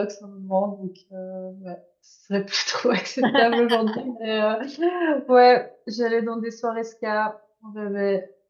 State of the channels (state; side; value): identical; both; correlation 1.00